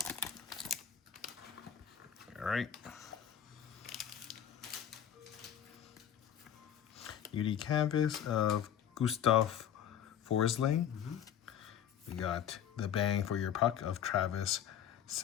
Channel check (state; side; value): quieter; right; 9.7 dB